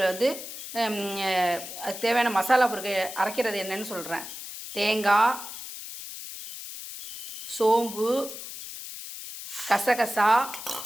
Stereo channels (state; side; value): noise; left; hiss, 10 dB below the sound